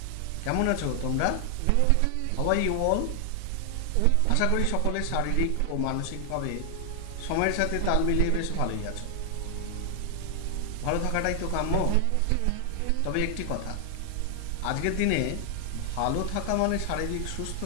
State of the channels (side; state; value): both; different; correlation 0.00